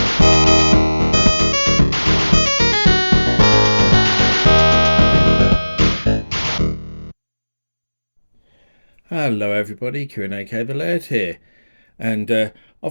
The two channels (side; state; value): both; inverted; correlation -1.00